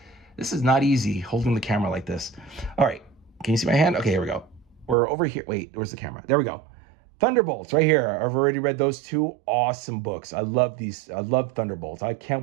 This is not easy holding the camera like this. All right, can you see my hand? Okay, here we go. We're over here. Wait, where's the camera? There we go. Thunderbolts right here. I've already read those 2 awesome books. I love these. I love Thunderbolts. I can't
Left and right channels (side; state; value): left; drops out; at 5.0 s